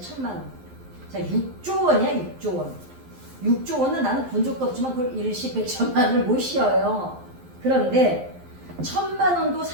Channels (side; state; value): left; late; 11 ms